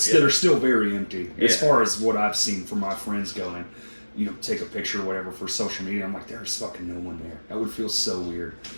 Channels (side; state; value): both; inverted; correlation -1.00